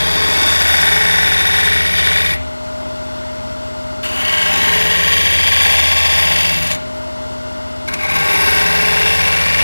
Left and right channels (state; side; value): inverted; both; correlation -1.00